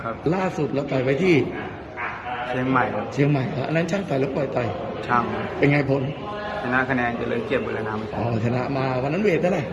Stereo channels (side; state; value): both; identical; correlation 1.00